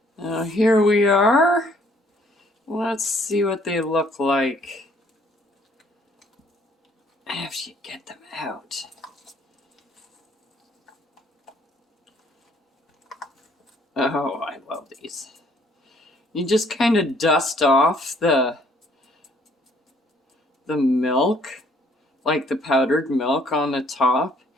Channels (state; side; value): normal; both; correlation 0.63